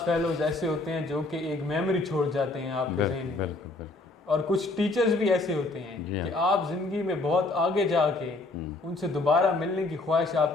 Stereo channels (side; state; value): right; quieter; 3.1 dB